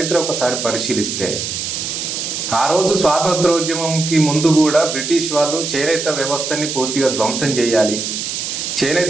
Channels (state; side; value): noise; right; hiss, 4 dB below the sound